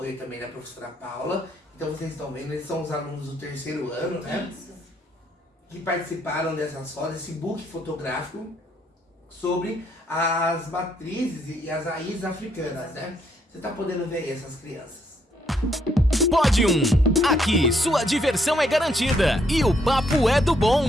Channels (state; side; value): normal; both; correlation 0.72